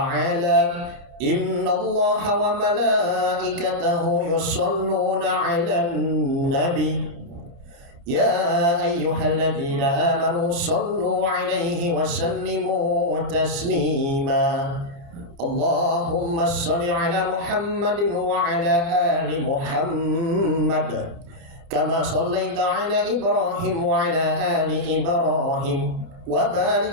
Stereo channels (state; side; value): late; left; 29 ms